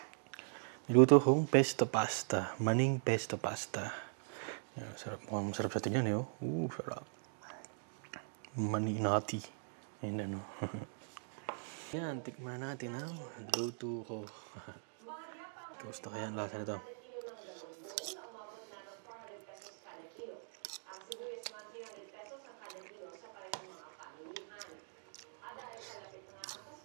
Niluto kong pesto pasta. Maning pesto pasta. Yan, sarap. Mukhang masarap sa tingnan eh. Sarap. Mani nati. Yan ano. Yan, tikman natin ang luto ko. Kamusta kaya ang lasa nito?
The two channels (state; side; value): silent; left; digital silence